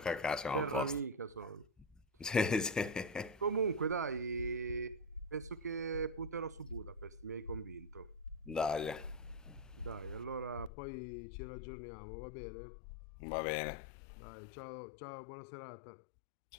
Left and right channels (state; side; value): drops out; right; at 10.7 s